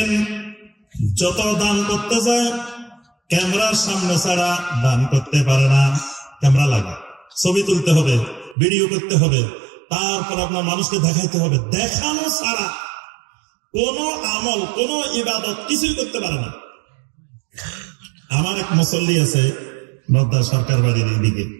যত দান করতে যায়, ক্যামেরার সামনে ছাড়া দান করতে পারে না। ক্যামেরা লাগে, ছবি তুলতে হবে, ভিডিও করতে হবে, তারপর আপনার মানুষকে দেখাইতে হবে। দেখানো ছাড়া কোন আমল, কোন ইবাদত কিছুই করতে পারে না। আমার এক মুসল্লি আছে নদ্দা সরকার বাড়ির এইদিকে,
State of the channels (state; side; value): drops out; left; at 8.6 s